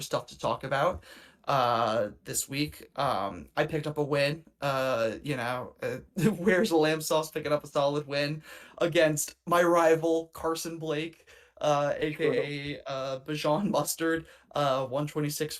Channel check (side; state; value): both; identical; correlation 1.00